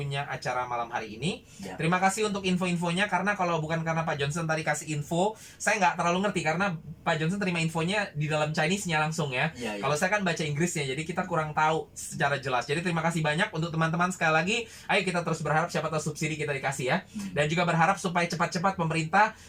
acara malam hari ini. Terima kasih untuk info-infonya karena kalau bukan bukan karena Pak Johnson tadi kasih info. Saya nggak terlalu ngerti karena Pak Johnson terima infonya di dalam Chinese-nya langsung ya. Iya, iya. Kalau saya kan baca Inggrisnya, jadi kita kurang tahu secara jelas. Jadi terima kasih banyak untuk teman-teman sekali lagi. Ayo kita terus berharap siapa tahu subsidi kita dikasih ya. Dan juga berharap supaya cepat-cepat pemerintah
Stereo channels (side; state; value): both; identical; correlation 1.00